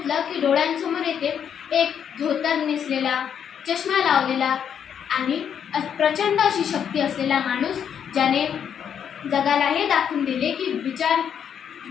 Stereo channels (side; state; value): right; quieter; 8.3 dB